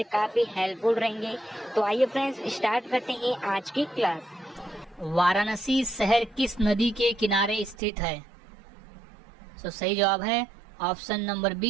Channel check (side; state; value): left; drops out; at 7.8 s